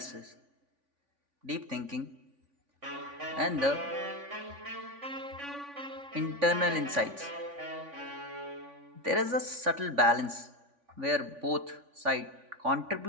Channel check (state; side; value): late; left; 3.5 ms